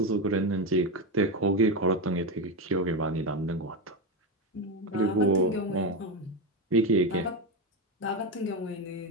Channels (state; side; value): normal; both; correlation 0.12